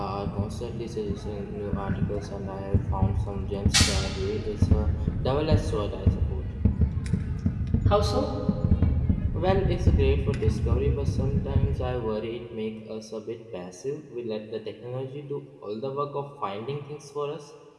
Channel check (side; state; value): both; identical; correlation 1.00